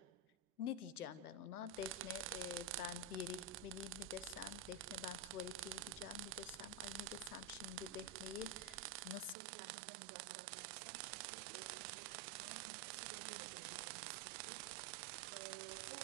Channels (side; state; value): left; drops out; at 9.3 s